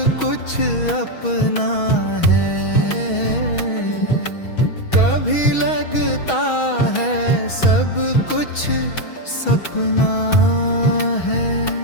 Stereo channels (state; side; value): late; right; 6.2 ms